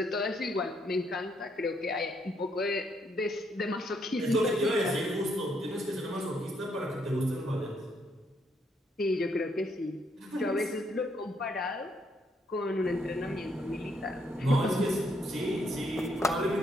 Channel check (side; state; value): both; normal; correlation 0.73